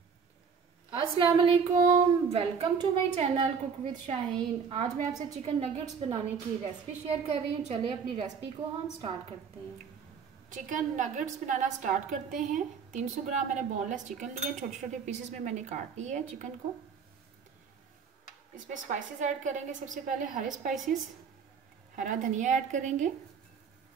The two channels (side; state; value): left; quieter; 6.2 dB